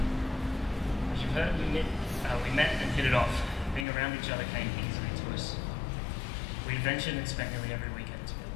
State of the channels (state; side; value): drops out; right; at 3.9 s